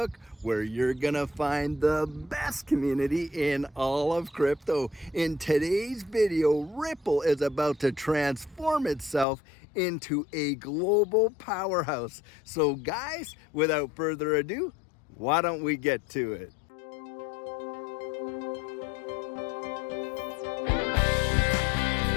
where you're gonna find the best community in all of crypto. In today's video, Ripple is about to transform itself into a global powerhouse. So guys, without further ado, why don't we get to it?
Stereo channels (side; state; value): right; drops out; at 9.2 s